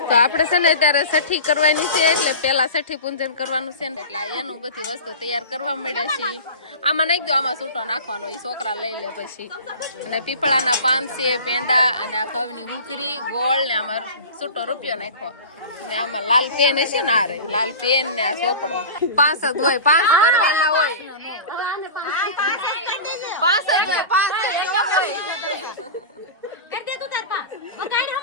તો આપણે છે ને ત્યારે છઠ્ઠી કરવાની છે એટલે પેલા છઠ્ઠી પૂજન કરવાનું છે ને એટલે એનું બધી વસ્તુ તૈયાર કરવા મળ્યા છે આમાં નાખી દો આમાં છૂટો નાખવાનો એ છોકરા લઈ લે પછી અને પીપળાના પાન છે પેંડા અને આ ઘઉંની હુંકરી ગોળ ને આમાં છૂટો રૂપિયો નાખો ને આમાં લાલ પેન હશે ને આ રહી લાલ પેન ને આ ચોપડો 5 જ હોય 5 કરવાના હોય 5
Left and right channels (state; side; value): inverted; both; correlation -0.34